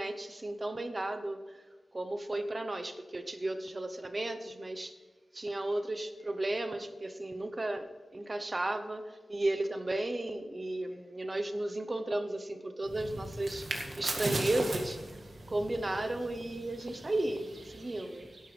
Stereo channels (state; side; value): normal; both; correlation 0.97